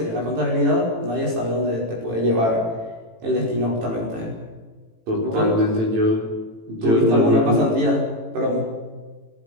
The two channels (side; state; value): left; late; 18 ms